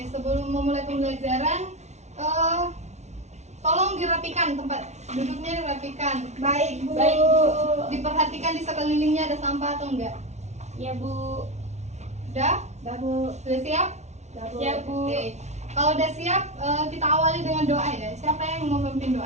sebelum memulai pembelajaran, tolong dirapikan tempat duduknya, dirapikan. Baik Bu. Baik, Bu. Diperhatikan di sekelilingnya ada sampah atau enggak. Ya, Bu. Udah? Dah Bu. Sudah siap? Dah Bu. Siap, Bu. Oke. Kalau udah siap, kita awali dengan doa ya. Siapa yang mau memimpin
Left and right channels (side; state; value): left; late; 0.32 ms